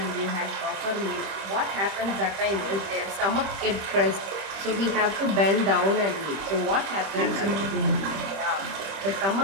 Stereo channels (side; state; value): left; late; 25 ms